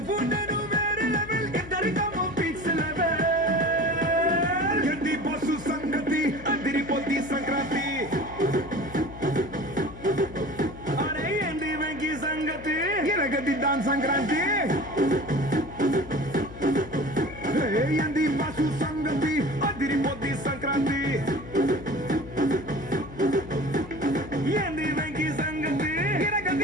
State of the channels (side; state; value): left; noise; hum, 14 dB below the sound